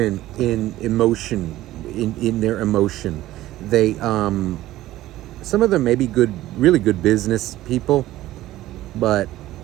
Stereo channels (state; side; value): quieter; left; 15.3 dB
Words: in emotion, in their emotion. They some of them may be really good business people, but